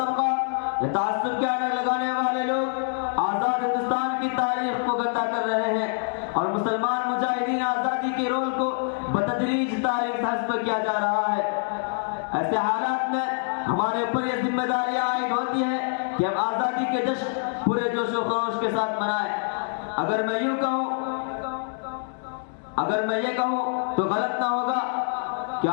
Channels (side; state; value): right; silent; 61 dB below the other